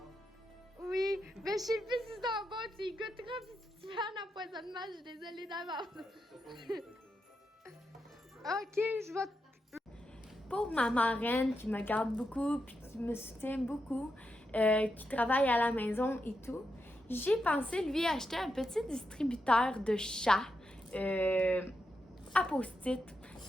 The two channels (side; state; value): both; normal; correlation 0.85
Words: Oui, mais je sais plus si c'est en bon, tu y goûteras, puis si tu fais un empoisonnement, je suis désolée d'avance. Ok, je vais... Pour ma marraine qui me garde beaucoup, puis qui me soutient beaucoup, qui travaille à la maison et tout, j'ai pensé lui acheter un petit distributeur de chats à post-it.